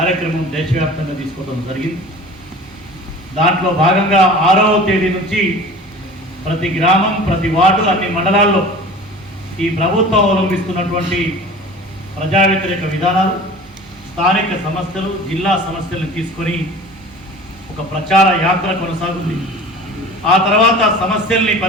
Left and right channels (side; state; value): both; normal; correlation 0.40